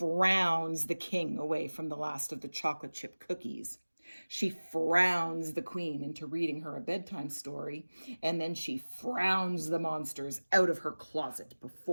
the king away from the last of the chocolate chip cookies. She frowns the queen into reading her a bedtime story, and then she frowns the monsters out of her closet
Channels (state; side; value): inverted; both; correlation -1.00